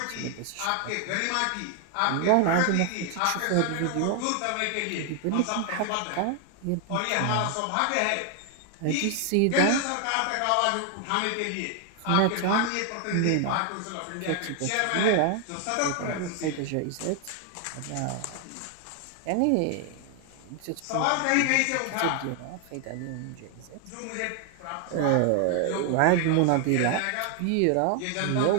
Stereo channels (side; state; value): both; different; correlation 0.00